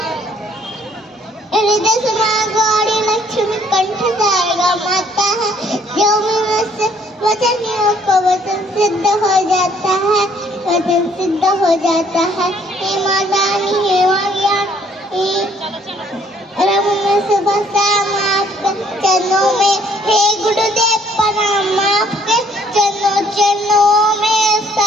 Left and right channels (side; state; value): both; normal; correlation 0.62